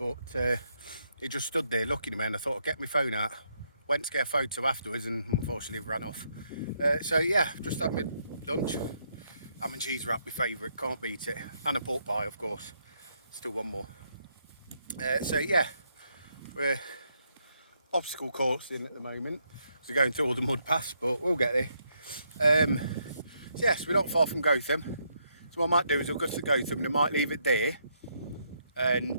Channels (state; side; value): inverted; both; correlation -0.76